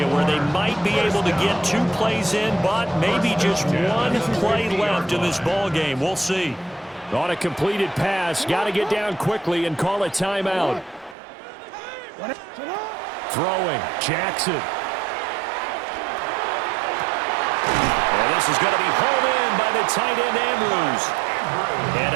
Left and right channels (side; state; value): left; drops out; at 11.2 s